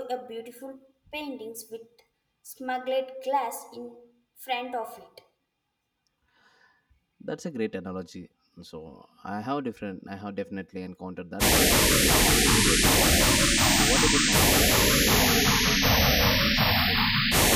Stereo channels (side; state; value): both; identical; correlation 1.00